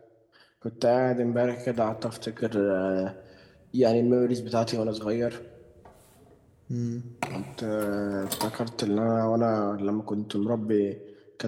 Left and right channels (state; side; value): identical; both; correlation 1.00